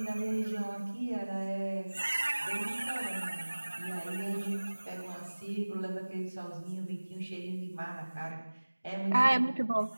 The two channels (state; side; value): inverted; both; correlation -1.00